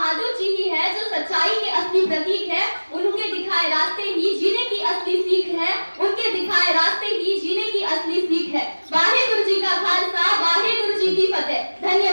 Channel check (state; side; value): inverted; both; correlation -1.00